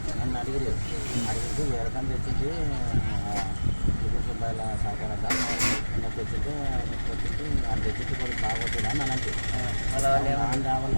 నన్ను అడిగితే వేరే కన్నా తెచ్చింది రూపాయల సహకారంట తెచ్చింటే అది తెచ్చింది కొద్దిగా బాగోతుందా అని అంటే అలా వాళ్ళ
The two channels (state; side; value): inverted; both; correlation -1.00